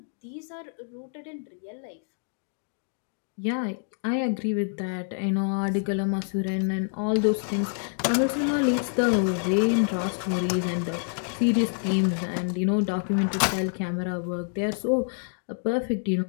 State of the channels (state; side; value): silent; right; 57 dB below the other